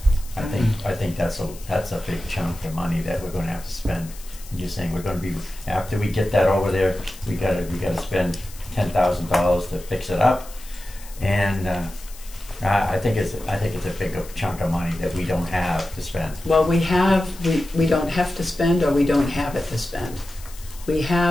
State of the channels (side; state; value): left; noise; hiss, 18 dB below the sound